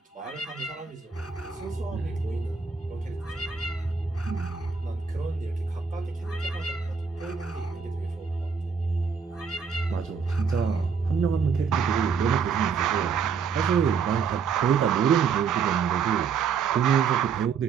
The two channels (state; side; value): quieter; left; 6.0 dB